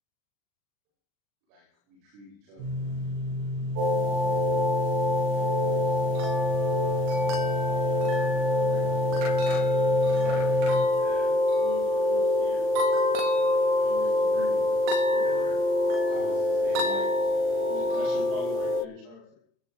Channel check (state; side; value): late; left; 40 ms